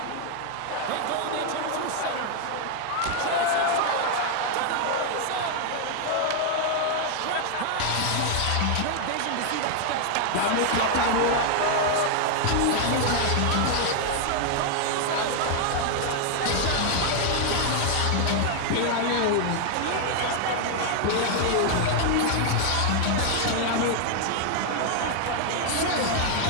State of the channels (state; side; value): different; both; correlation 0.00